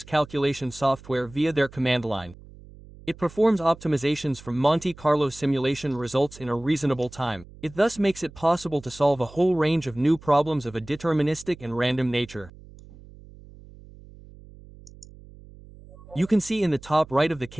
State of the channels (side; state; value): right; noise; hum, 20 dB below the sound